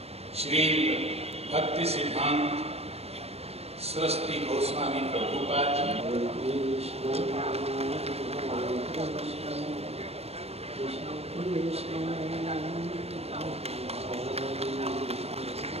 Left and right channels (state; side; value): late; left; 0.30 ms